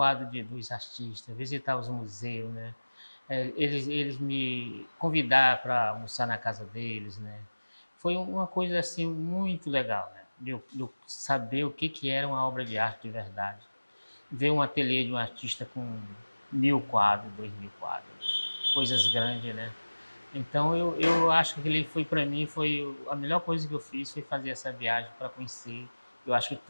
dos artistas, visitar os museus, né? Eles me convidaram para almoçar na casa deles, né? Foi uma coisa assim muito legal, né? De eu saber o que era uma obra de arte de verdade. Ver um ateliê de um artista com 1.000 quadros, 2.000 quadros, né? Coisas grandes, né? Então eu acho que ele foi para mim foi a melhor coisa que eu fiz foi fazer essa viagem para conhecer. Eu acho que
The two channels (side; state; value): both; inverted; correlation -1.00